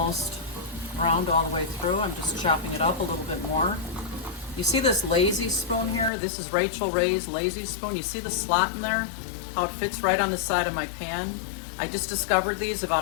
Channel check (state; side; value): drops out; right; at 6.1 s